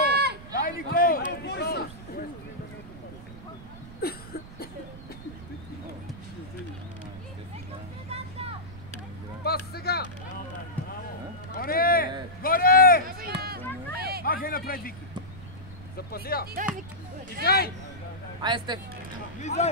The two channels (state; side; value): noise; right; rumble, 15 dB below the sound